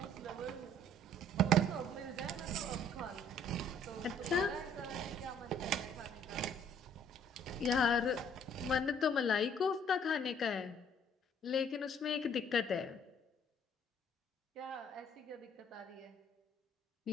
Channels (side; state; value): both; normal; correlation 0.59